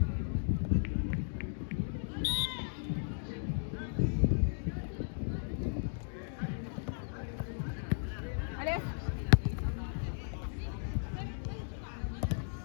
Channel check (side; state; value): right; silent; digital silence